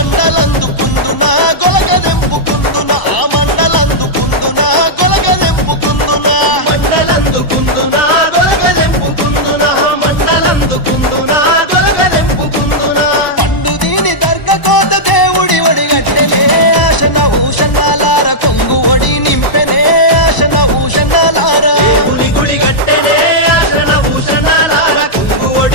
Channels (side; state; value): right; late; 1.0 ms